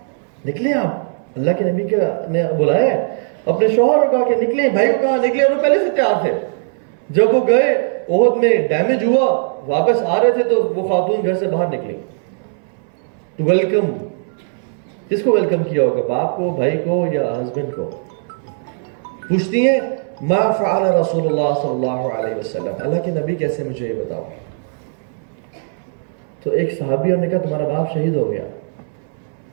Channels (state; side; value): silent; left; 65 dB below the other